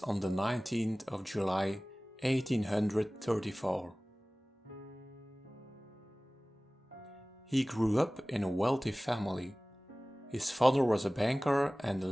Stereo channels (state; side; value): normal; both; correlation 0.98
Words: on the 19th of July 1834. He grew up in a wealthy family. His father was a banker and